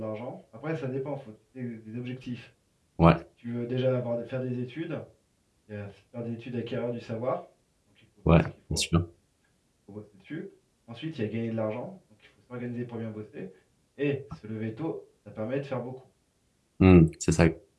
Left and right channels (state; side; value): identical; both; correlation 1.00